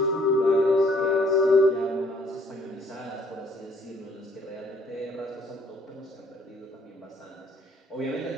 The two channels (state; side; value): normal; both; correlation 0.62